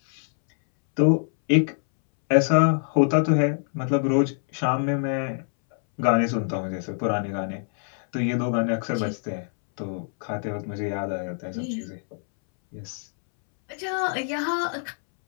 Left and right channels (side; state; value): right; silent; 62 dB below the other